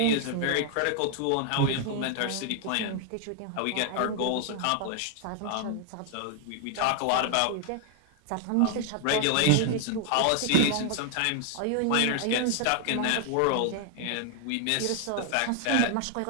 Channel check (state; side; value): different; both; correlation 0.00